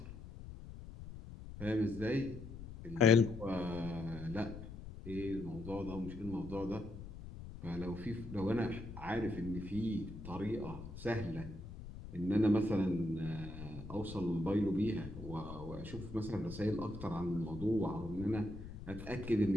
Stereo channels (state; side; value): noise; left; rumble, 12 dB below the sound